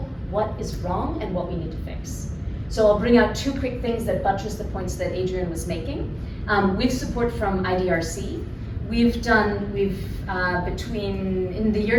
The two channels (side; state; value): both; identical; correlation 1.00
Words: what is wrong and what we need to fix. So I'll bring out 2 quick things that buttress the points that Adrian was making. With support from IDRC, in the